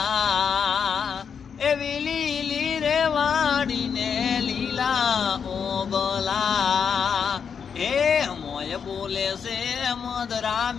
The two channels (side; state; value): right; quieter; 6.8 dB